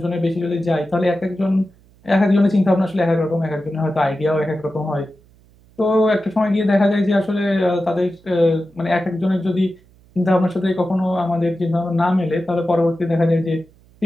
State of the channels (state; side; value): noise; right; hum, 29 dB below the sound